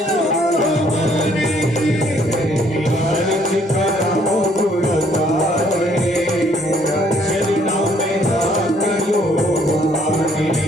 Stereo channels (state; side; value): normal; both; correlation 0.64